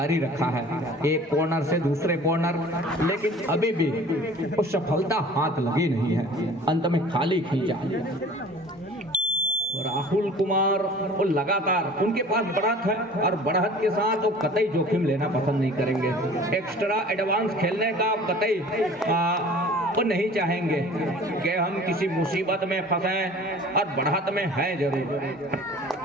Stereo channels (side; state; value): both; normal; correlation 0.45